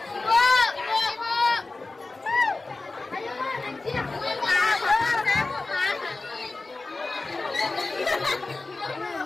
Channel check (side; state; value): right; quieter; 3.4 dB